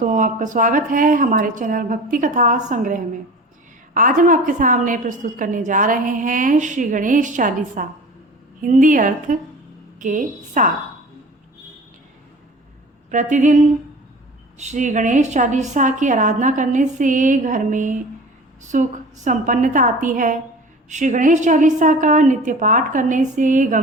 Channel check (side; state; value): both; normal; correlation 0.40